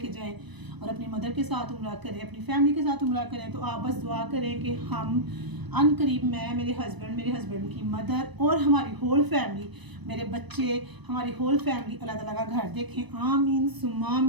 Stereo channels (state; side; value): late; left; 1.0 ms